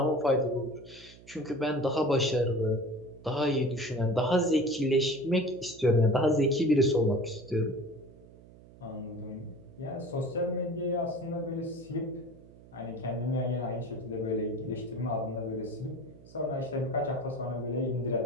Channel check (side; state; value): right; noise; hum, 21 dB below the sound